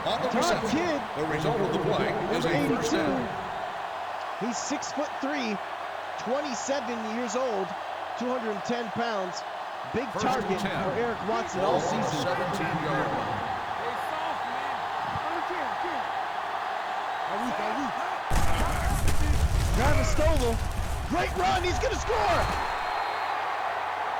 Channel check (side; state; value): both; identical; correlation 1.00